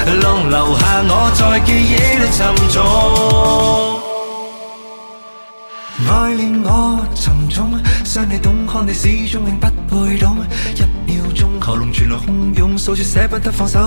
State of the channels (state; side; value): inverted; both; correlation -1.00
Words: alone， 留下我在記憶裏沉重。愛令我沉重，想你懂，看你始終永不會懂。一秒鐘喉嚨傳來洶湧，數住捨不得放